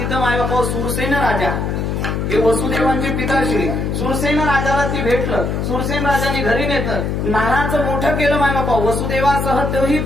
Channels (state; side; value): noise; left; hum, 1 dB below the sound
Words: माय बापा सुरसेन राजा हे वसुदेवांचे पिताश्री. सुरसेन राजाला ती भेटलं. सुरसेन राजाने घरी नेतं, नानाचं मोठं केलं माय बापा. वसुदेवासह तोही